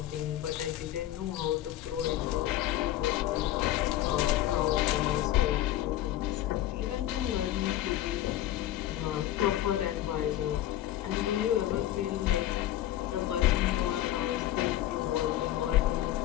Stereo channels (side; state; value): right; quieter; 13.7 dB